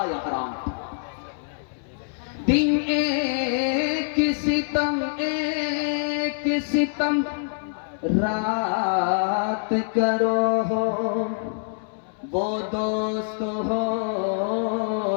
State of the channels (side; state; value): right; silent; digital silence